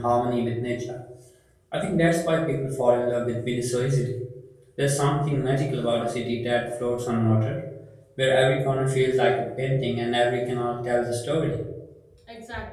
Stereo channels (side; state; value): both; identical; correlation 1.00